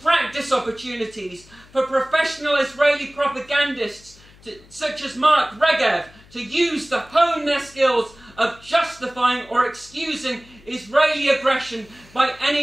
practice opportunities for professional Israeli propagandists such as Mark Regev to hone their skills of justifying or excusing Israeli aggression by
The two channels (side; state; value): left; noise; hum, 25 dB below the sound